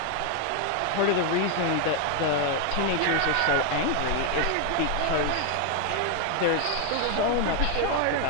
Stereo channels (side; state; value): both; different; correlation 0.01